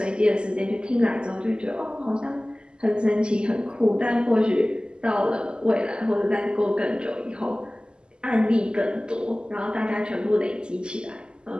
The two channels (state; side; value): late; left; 0.049 ms